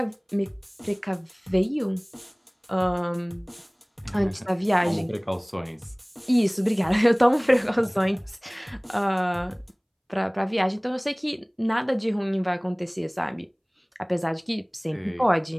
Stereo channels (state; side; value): identical; both; correlation 1.00